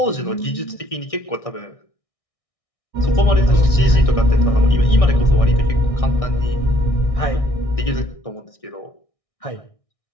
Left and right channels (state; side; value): late; right; 1.6 ms